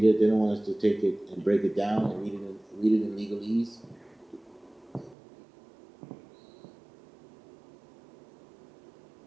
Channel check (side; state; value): left; drops out; at 5.2 s